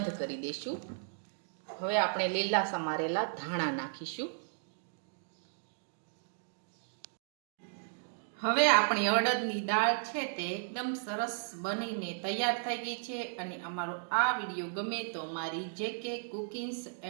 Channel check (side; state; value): left; silent; digital silence